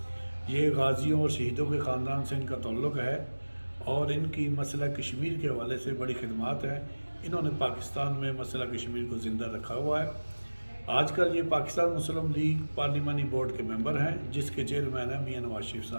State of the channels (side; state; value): both; inverted; correlation -1.00